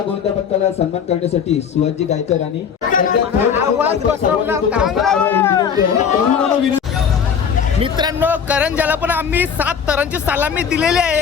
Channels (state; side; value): quieter; right; 7.2 dB